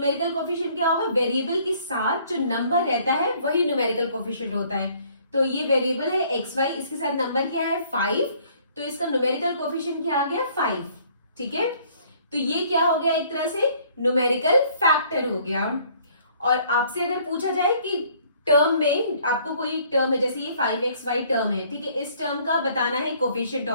कोफिशिएंट क्या होगा, वेरिएबल के साथ जो नंबर रहता है वही न्यूमेरिकल कोफिशिएंट होता है। तो ये वेरिएबल है xy, इसके साथ नंबर क्या है 5, तो इसका न्यूमेरिकल कोफिशिएंट क्या आ गया 5। ठीक है, तो ये क्या हो गया, एक तरह से न्यूमेरिकल फैक्टर हो गया। और आपसे अगर पूछा जाए कि टर्म में आपको कोई टर्म है, जैसे ये 5xy टर्म है, ठीक है, इस टर्म का बताना है कोफिशिएंट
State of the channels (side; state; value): both; inverted; correlation -0.60